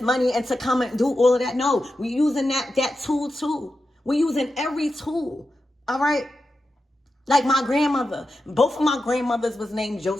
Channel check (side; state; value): both; normal; correlation 0.90